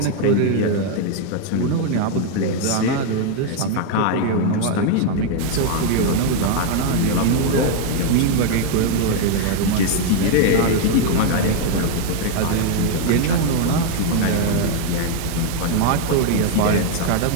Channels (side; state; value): both; different; correlation 0.00